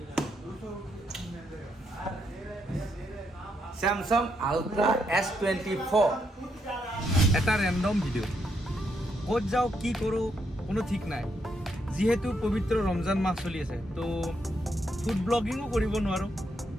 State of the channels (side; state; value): both; normal; correlation 0.78